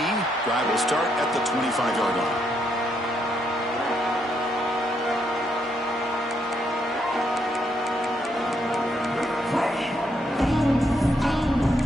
Drive will start at the 25-yard line.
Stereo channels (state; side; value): normal; both; correlation 0.76